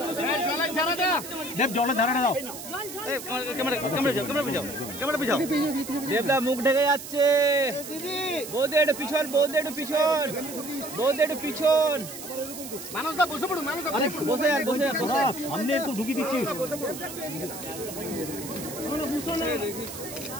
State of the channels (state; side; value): noise; right; hiss, 11 dB below the sound